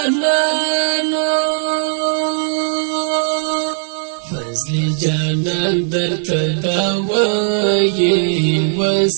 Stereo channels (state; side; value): silent; left; digital silence